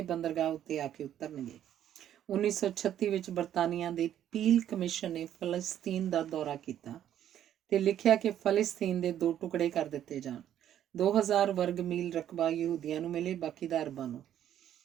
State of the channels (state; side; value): quieter; left; 10.8 dB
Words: ਬੰਦਰਗਾਹ ਉੱਤੇ ਆ ਕੇ ਉਤਰਨਗੇ। 1936 ਵਿੱਚ ਬਰਤਾਨੀਆ ਦੇ ਪੀਲ ਕਮਿਸ਼ਨ ਨੇ ਫਲਸਤੀਨ ਦਾ ਦੌਰਾ ਕੀਤਾ ਤੇ ਲਿਖਿਆ ਕਿ ਫਲਸਤੀਨ ਦੇ 2 ਟੁਕੜੇ ਕਰ ਦਿੱਤੇ ਜਾਣ। 2000 ਵਰਗ ਮੀਲ ਰਕਬਾ ਯਹੂਦੀਆਂ ਨੂੰ ਮਿਲੇ, ਬਾਕੀ ਦਾ ਅਰਬਾਂ ਨੂੰ।